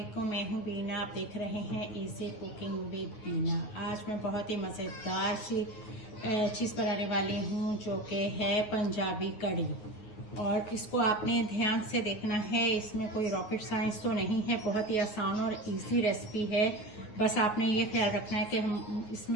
मैं हूँ बीना। आप देख रहे हैं इजी कुकिंग विद बीना। आज मैं बहुत ही मज़ेदार सी चीज़ बनाने वाली हूँ जो कि है पंजाबी कड़ी। और इसको आपने ध्यान से देखना है, इसमें कोई रॉकेट साइंस तो नहीं है, बहुत ही आसान और इजी रेसिपी है। बस आपने ये ख्याल रखना है कि हम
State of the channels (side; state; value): right; late; 9.5 ms